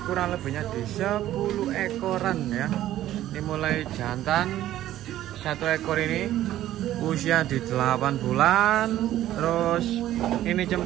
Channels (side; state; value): left; quieter; 13.3 dB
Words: kurang lebihnya di 10 ekoran ya. Ini mulai jantan. Satu ekor ini usia di 8 bulan. Terus ini